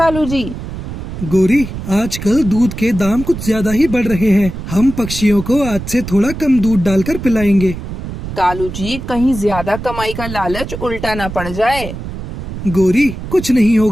जी। गोरी, आजकल दूध के दाम कुछ ज्यादा ही बढ़ रहे हैं। हम पक्षियों को आज से थोड़ा कम दूध डालकर पिलाएंगे। कालू जी, कहीं ज्यादा कमाई का लालच उल्टा ना पड़ जाए। गोरी, कुछ नहीं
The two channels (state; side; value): noise; right; rumble, 8 dB below the sound